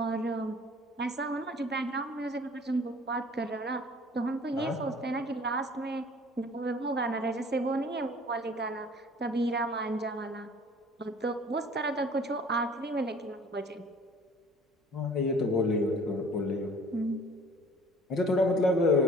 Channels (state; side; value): normal; both; correlation 0.50